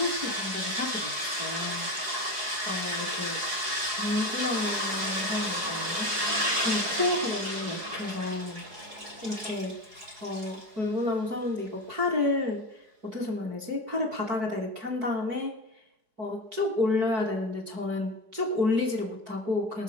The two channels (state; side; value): late; left; 4.7 ms